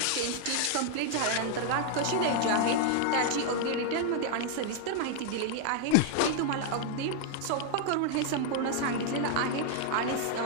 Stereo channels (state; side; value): different; both; correlation 0.00